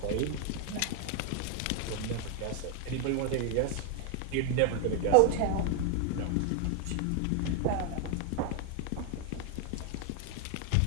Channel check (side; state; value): both; different; correlation 0.00